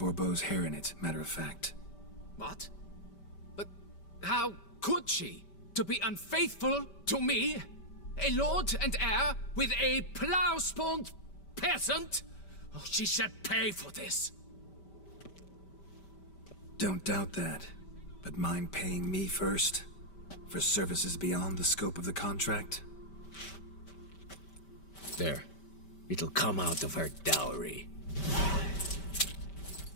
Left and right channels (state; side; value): late; right; 5.1 ms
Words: hair in it, matter of fact. What? But how could she? To be unfaithful to me? A lord and heir with a plow-spawned peasant? Oh, she shall pay for this. Don't doubt that. But mind paying me first? For services beyond the scope of the contract? There. It'll come out of her dowry.